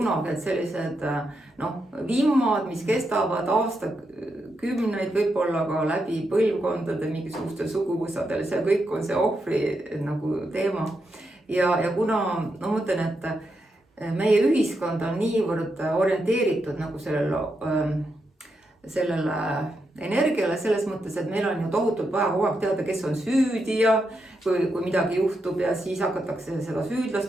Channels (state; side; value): normal; both; correlation 0.84